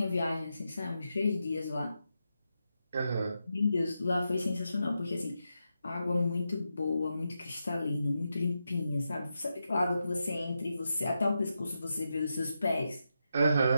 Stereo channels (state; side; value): inverted; both; correlation -0.87